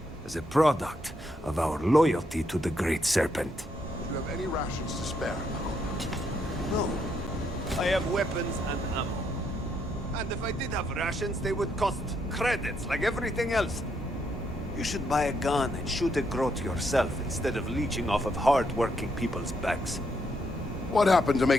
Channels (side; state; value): both; normal; correlation 0.76